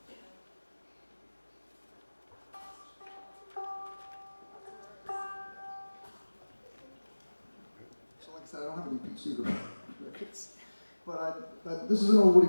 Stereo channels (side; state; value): both; inverted; correlation -1.00